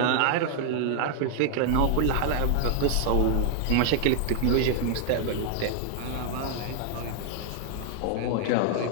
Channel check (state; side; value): different; both; correlation 0.00